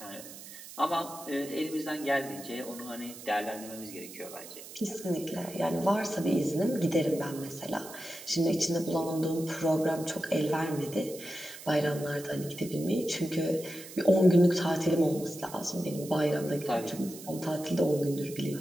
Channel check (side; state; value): right; noise; hiss, 14 dB below the sound